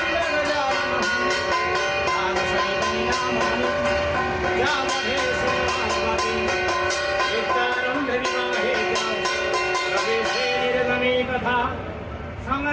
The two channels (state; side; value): identical; both; correlation 1.00